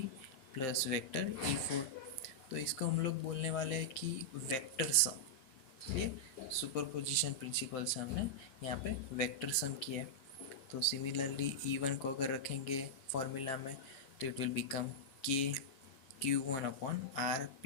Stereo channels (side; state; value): right; late; 7.6 ms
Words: plus vector E4। तो इसको हम लोग बोलने वाले हैं कि वेक्टर सम। ये सुपर पोजिशन प्रिंसिपल से हमने यहाँ पे वेक्टर सम किया है। तो सिमिलरली E1 को अगर रखेंगे फॉर्मूला में तो इट विल बिकम के Q1 upon